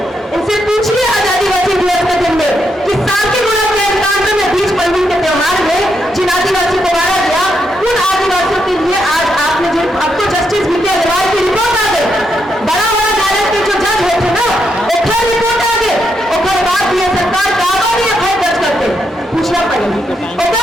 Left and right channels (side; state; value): both; normal; correlation 0.80